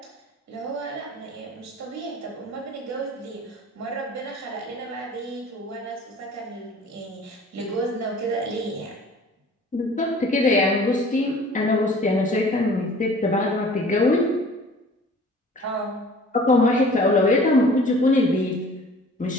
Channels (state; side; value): normal; both; correlation 0.48